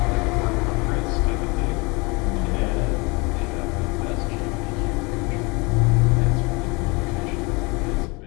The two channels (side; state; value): right; quieter; 27.6 dB